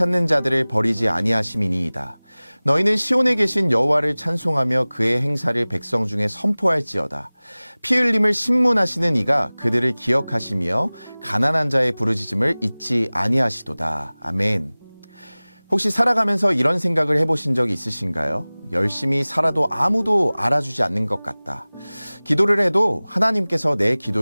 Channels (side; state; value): both; inverted; correlation -1.00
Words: 자들을 버리지 아니하심이니이다. 너희는 시온에 계신 여호와를 찬송하며 그의 행사를 백성 중에 선포할지어다. 피 흘림을 신문하시는 이가 그들을 기억하시며 가난한 자의 부르짖음을 잊지 아니하시도다. 아멘. 혹시 살아가면서 이런 생각을 해보신 적이 있으신가요? 열심히 살아도 아무도 알아주지 않는 것 같다. 기도를 해도 하나님께서 내